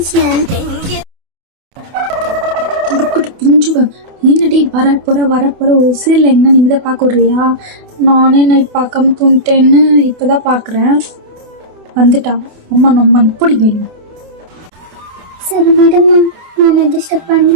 பிஞ்சுவன் என்னடி வரப்போற ஒரு சீரியல் எங்க நிம்மதியா பார்க்க விடுறியா? நானே நைட் பார்க்காம தூங்கிட்டேன்னு இப்பதான் பாக்குறேன். வந்துட்டா அம்மா நம்ம பிடிக்கும். சரி விடுமா, நான் டிஸ்டர்ப்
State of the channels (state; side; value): late; left; 28 ms